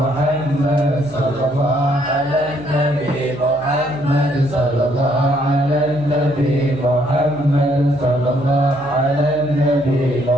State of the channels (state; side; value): noise; left; hum, 23 dB below the sound